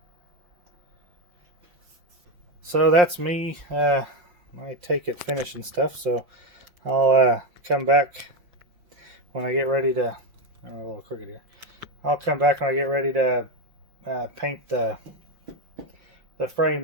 So that's me. My take at finishing stuff. So I'll come back when I get ready to. Oh, a little crooked here. I'll come back when I get ready to paint the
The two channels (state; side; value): late; left; 5.7 ms